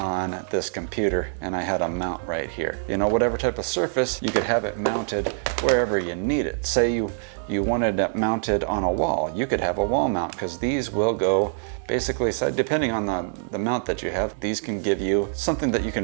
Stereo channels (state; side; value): silent; left; 62 dB below the other